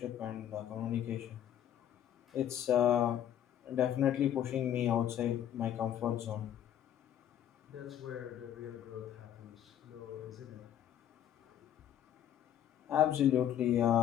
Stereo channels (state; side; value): quieter; right; 10.6 dB